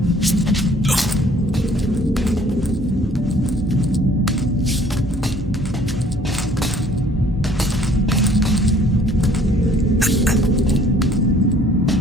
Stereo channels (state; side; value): normal; both; correlation 0.56